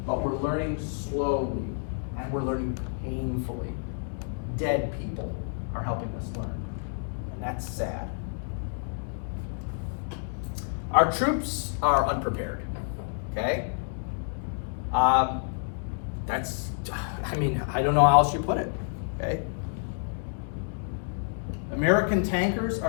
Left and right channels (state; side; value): silent; right; digital silence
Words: but we're learning slowly, and we're learning painfully. Dead people are helping us learn, and that's sad. Our troops are unprepared, okay? I don't know how else you put it, okay? American tankers